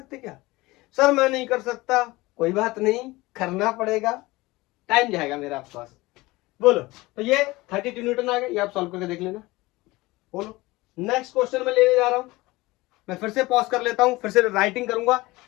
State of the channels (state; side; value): quieter; right; 20.7 dB